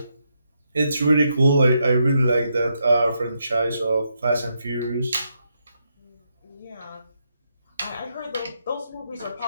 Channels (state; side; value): inverted; both; correlation -0.80